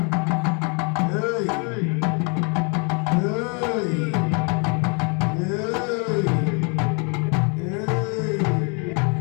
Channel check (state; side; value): quieter; right; 36.3 dB